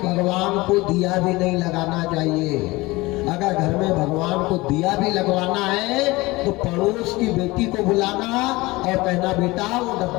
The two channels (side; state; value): right; quieter; 21.5 dB